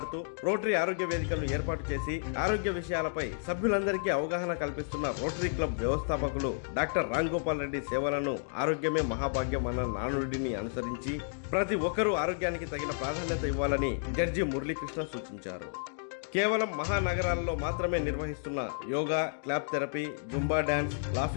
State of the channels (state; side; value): silent; right; digital silence